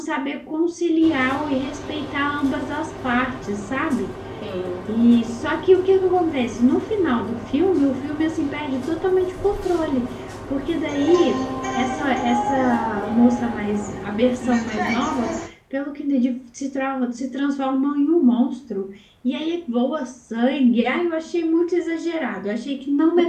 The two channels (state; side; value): identical; both; correlation 1.00